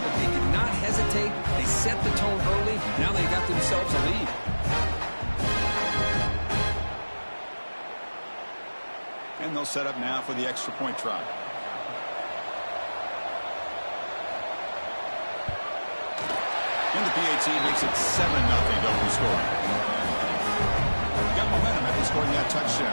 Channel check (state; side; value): inverted; both; correlation -1.00